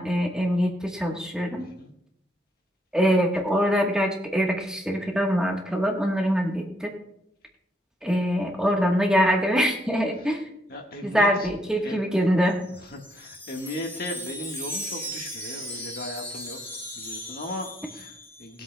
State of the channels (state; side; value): normal; both; correlation 0.73